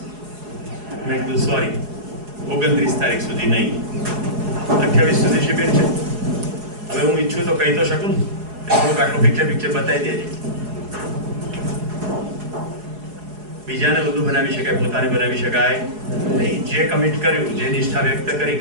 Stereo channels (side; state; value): left; late; 4.8 ms